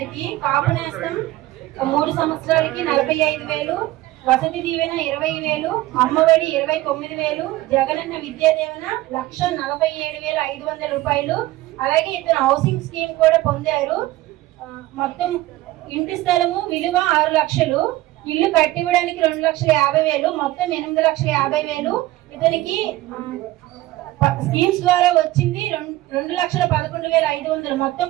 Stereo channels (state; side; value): quieter; left; 17.1 dB